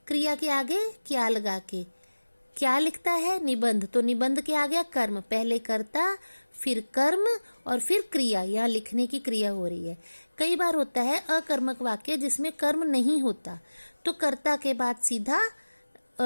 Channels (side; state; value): both; inverted; correlation -1.00